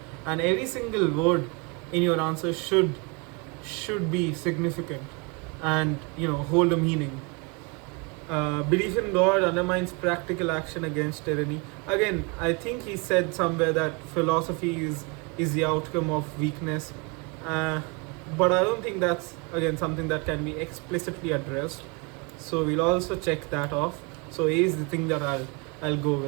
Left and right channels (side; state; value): left; quieter; 30.2 dB